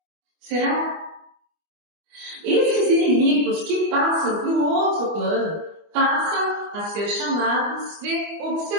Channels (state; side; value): late; left; 25 ms